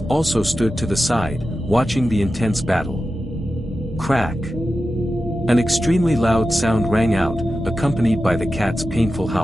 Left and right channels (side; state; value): both; normal; correlation 0.92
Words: also stood to the side, watching the intense battle. Crack! An extremely loud sound rang out, accompanied by the cat's painful